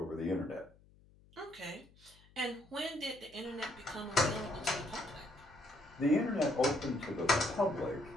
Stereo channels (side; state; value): left; noise; hum, 27 dB below the sound